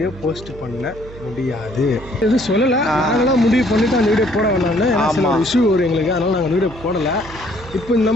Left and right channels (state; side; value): noise; right; hum, 17 dB below the sound